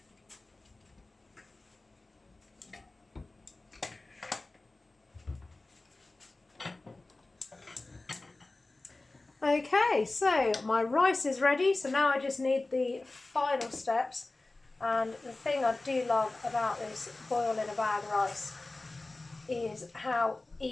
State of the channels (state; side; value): quieter; right; 3.1 dB